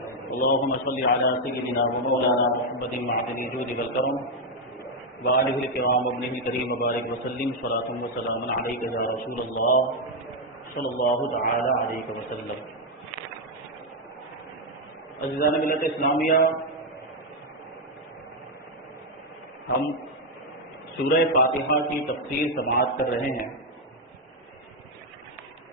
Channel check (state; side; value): normal; both; correlation 0.02